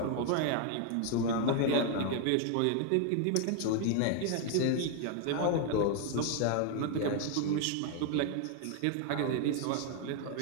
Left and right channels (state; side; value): different; both; correlation 0.01